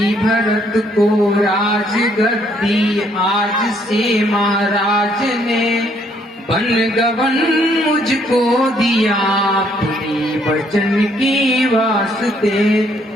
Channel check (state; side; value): normal; both; correlation 0.68